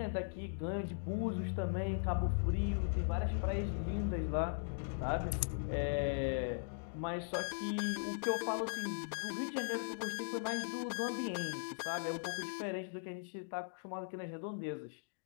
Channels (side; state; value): right; silent; digital silence